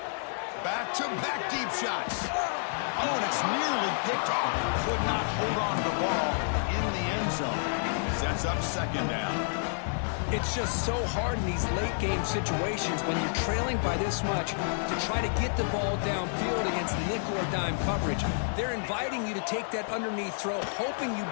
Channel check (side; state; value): right; silent; digital silence